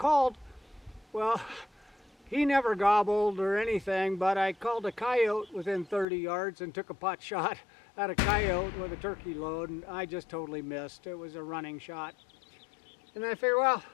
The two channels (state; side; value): drops out; right; at 6.1 s